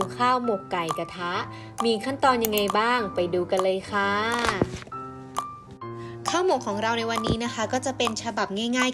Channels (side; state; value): both; identical; correlation 1.00